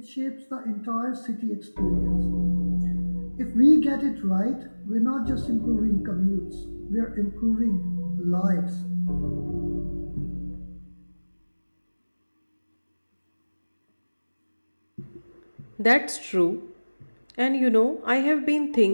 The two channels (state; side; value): inverted; both; correlation -1.00